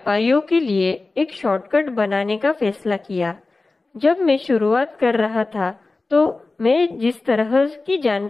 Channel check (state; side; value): quieter; right; 3.5 dB